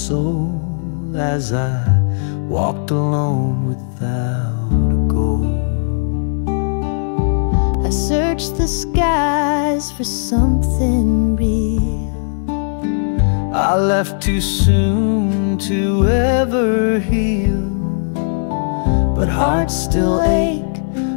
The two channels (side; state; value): right; silent; digital silence